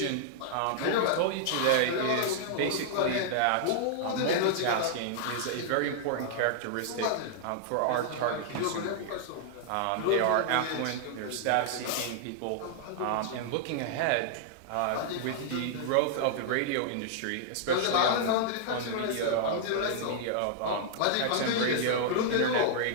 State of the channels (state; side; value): different; both; correlation -0.01